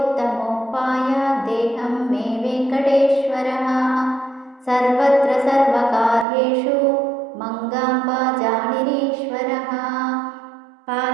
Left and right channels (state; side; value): drops out; left; at 6.2 s